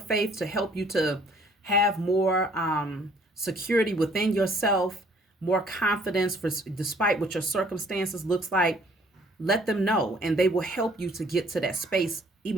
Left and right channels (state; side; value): normal; both; correlation 0.60